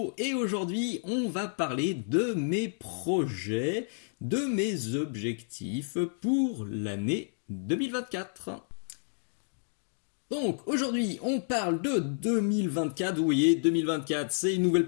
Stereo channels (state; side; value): silent; right; digital silence